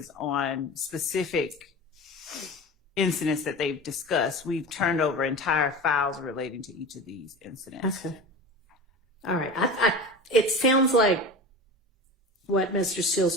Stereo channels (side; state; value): both; normal; correlation 0.32